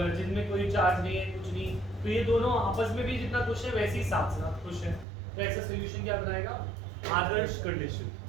जिनमें कोई चार्ज नहीं है, कुछ नहीं। तो ये दोनों आपस में भी जितना खुश है वैसे ही साथ साथ खुश है। तो ऐसा सॉल्यूशन क्या बनाएगा? आदर्श कंडीशन,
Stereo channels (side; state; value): left; drops out; at 5.1 s